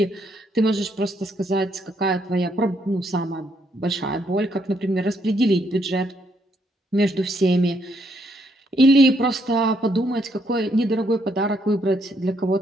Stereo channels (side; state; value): both; normal; correlation 0.73